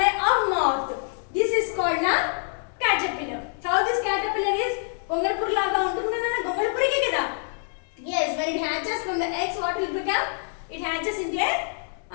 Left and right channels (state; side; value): silent; right; 61 dB below the other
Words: or moth. This is called a caterpillar. How this caterpillar is? Gongalpur laga untundi Nana. Gongalpur ke kada? Yes, when it hatches from the eggs, what will it become? It hatches into a